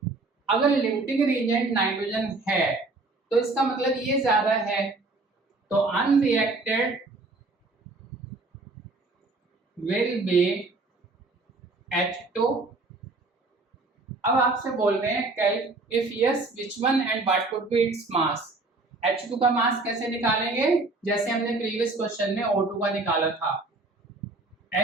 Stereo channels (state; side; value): quieter; left; 3.4 dB